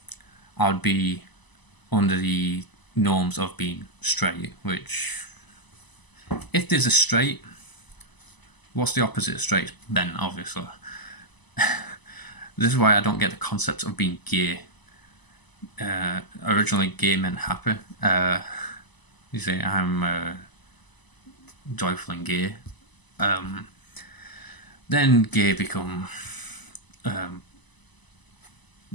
I would be under the norms of being straight, which, if there's a straight, what's the opposite of straight? Ben, obviously. This is why I don't get the concept of being gay. Originally, gay meant happy. You say, I'm joyful and gay. Then gay become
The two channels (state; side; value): late; right; 1.0 ms